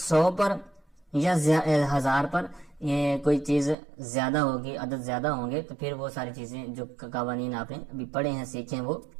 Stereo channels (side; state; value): left; drops out; at 3.8 s